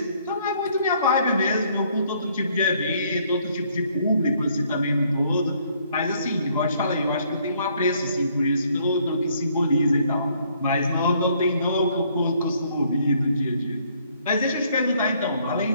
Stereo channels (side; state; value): both; inverted; correlation -0.66